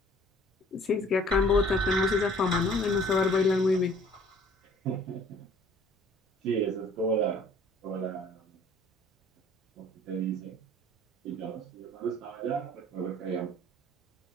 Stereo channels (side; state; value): both; normal; correlation 0.53